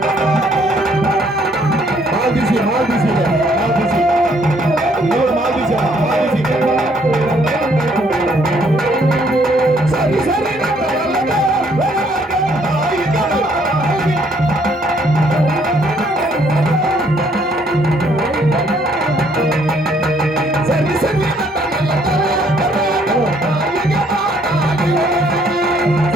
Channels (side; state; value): both; normal; correlation 0.66